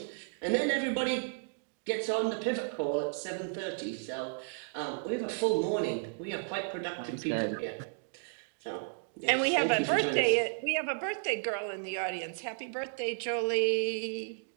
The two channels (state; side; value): silent; left; digital silence